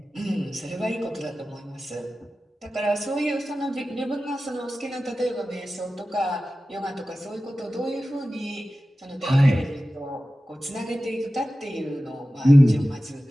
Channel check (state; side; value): normal; both; correlation 0.95